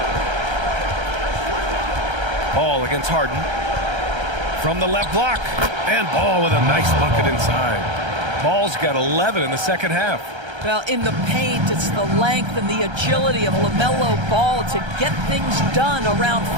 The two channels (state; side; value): late; left; 1.3 ms